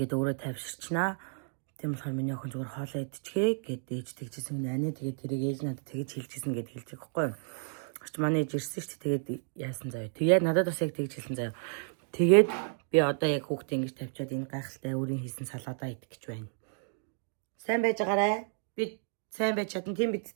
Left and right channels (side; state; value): left; silent; 56 dB below the other